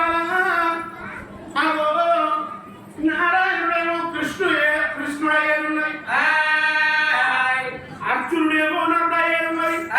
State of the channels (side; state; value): both; identical; correlation 1.00